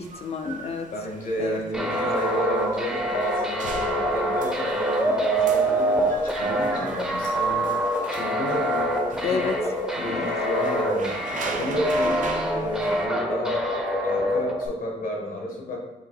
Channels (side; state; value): both; normal; correlation 0.55